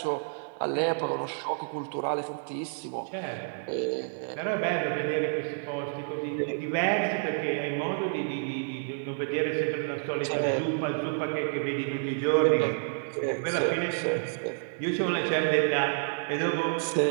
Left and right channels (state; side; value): silent; left; digital silence